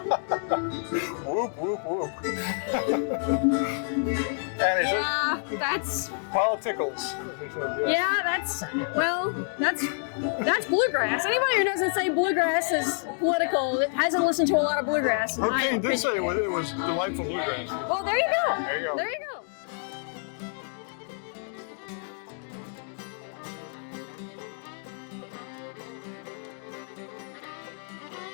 Whoop, whoop, whoop. And he said, that's politicals. yeah, that's bluegrass. Anybody who doesn't say bluegrass is political hasn't listened to a lot of bluegrass. in my Hurricane did opinion. say it was delightful bluegrass. Well, there you go. There you go. There you go.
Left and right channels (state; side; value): silent; right; 55 dB below the other